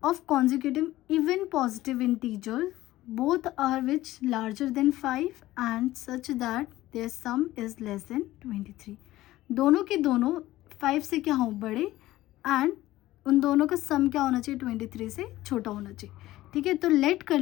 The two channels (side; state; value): right; quieter; 16.1 dB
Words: of consecutive even positive integer both are which larger than 5 and such that their sum is less than 23। दोनों के दोनों 5 से क्या हो, बड़े, एंड उन दोनों का सम क्या होना चाहिए, 23 से छोटा होना चाहिए। ठीक है, तो लेट कर